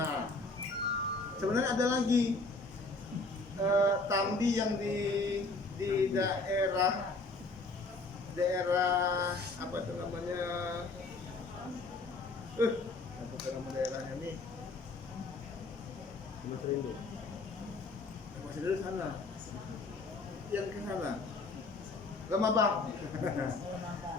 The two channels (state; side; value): quieter; right; 3.4 dB